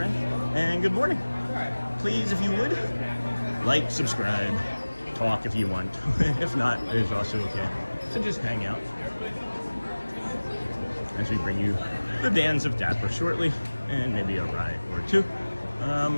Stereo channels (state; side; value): inverted; both; correlation -1.00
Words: and good morning. Please, if you would, like, subscribe, talk if you want. If not, it is also okay. So just hang out as we bring you the Dans of Dapper shortly, and maybe a ride or two. I